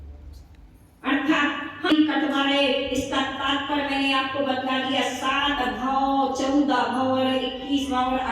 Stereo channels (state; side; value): identical; both; correlation 1.00